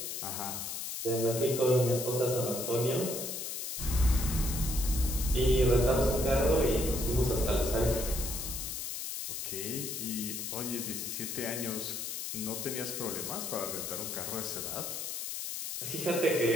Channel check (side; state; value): left; noise; hiss, 5 dB below the sound